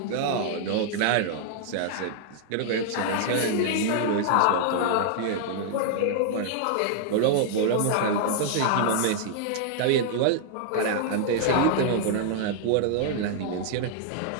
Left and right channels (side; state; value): both; different; correlation -0.01